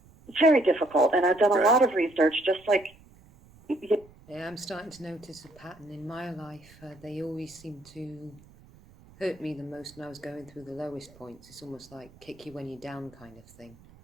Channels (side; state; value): right; noise; rumble, 25 dB below the sound